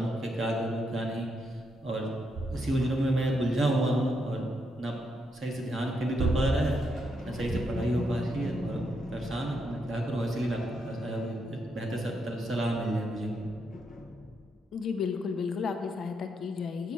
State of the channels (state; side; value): normal; both; correlation 0.80